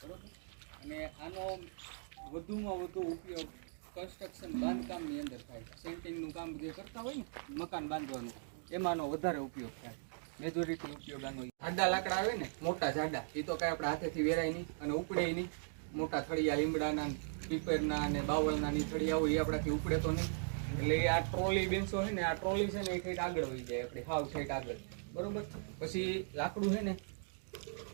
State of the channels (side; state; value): left; silent; digital silence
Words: બરાબર. અને આનો વધુમાં વધુ ઉપયોગ કન્સ્ટ્રક્શન બાંધકામની અંદર થાય. સેન્ટિંગનું કામ જે કરતા હોય ને મકાન બાંધવાનું, એમાંનો વધારે ઉપયોગ થાય. મેજોરિટી ઉપયોગ આનો. જાડા લાકડા આવે ને, મોટા જાડા, એ તો કાંઈ આપણે હાથેથી વેરાય નહીં અને ઉપડે નહીં. મોટા થળિયા લીમડાના, પીપરના અને બાવળના ની થળિયા હોય એ આપણાથી ઉપડે તો નહીં. એટલે આ ટ્રોલી બેન્ચો છે ને, આ ટ્રોલી છે ને એ ઠેઠ આગળ વહી જાય, આપણે હાવ ઠેઠ આગળ, બરોબર. પછી લાકડું છે